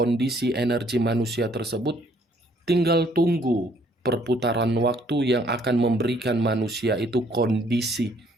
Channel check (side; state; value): both; normal; correlation 0.64